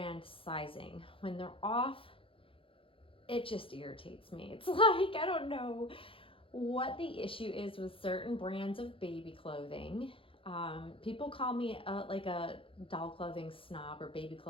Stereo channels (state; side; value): late; right; 0.26 ms